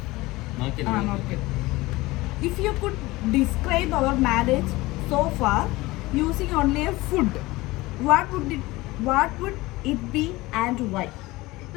If you could describe our marriage so far using only a food, what would it be and why?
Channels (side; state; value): right; quieter; 20.3 dB